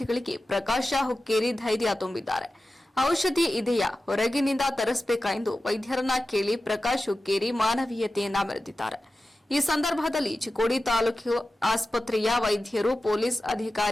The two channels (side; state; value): both; normal; correlation 0.94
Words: ಪ್ರಕಾಶ ಹುಕ್ಕೇರಿ ಧೈರ್ಯ ತುಂಬಿದ್ದಾರೆ. ಔಷಧಿ ಇದೆಯಾ, ಹೊರಗಿನಿಂದ ತರಿಸಬೇಕಾ ಎಂದು ವೈದ್ಯರನ್ನ ಕೇಳಿ ಪ್ರಕಾಶ್ ಹುಕ್ಕೇರಿ ಮಾನವೀಯತೆಯನ್ನ ಮೆರೆದಿದ್ದಾರೆ. ಈ ಸಂದರ್ಭದಲ್ಲಿ ಚಿಕ್ಕೋಡಿ ತಾಲೂಕು ಆಸ್ಪತ್ರೆಯ ವೈದ್ಯರು, ಪೊಲೀಸ್